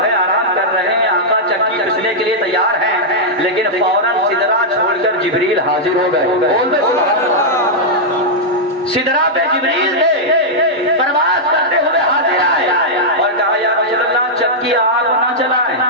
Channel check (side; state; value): both; normal; correlation -0.06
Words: ہے آرام کر رہے ہیں، آقا چکی پیسنے کے لیے تیار ہیں، لیکن فوراً سدرا چھوڑ کر جبریل حاضر ہو گئے۔ بول دے سبحان اللہ، سدرا پہ جبریل تھے، پرواز کرتے ہوئے حاضر آئے اور کہا یا رسول اللہ چکی آپ نہ چلائیں۔